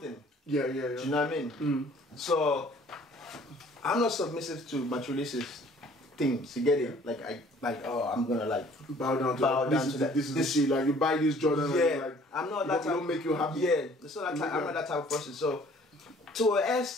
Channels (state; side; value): normal; both; correlation 0.55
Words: Yeah. Do you know what I mean? So, I'm not submissive to materialistic things. You get it? Like, I'm gonna like bow down to that. This is the shit. Like, you buy this Jordan. Yeah, and like, I'm not that type. Don't make you happy. Yeah, I'm not that type of person. So, to an